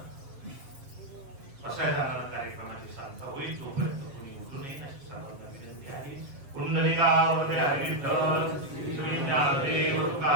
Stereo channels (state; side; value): late; left; 7.9 ms